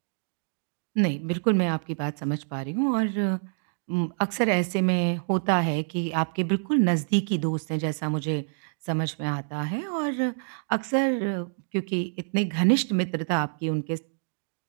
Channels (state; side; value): silent; left; digital silence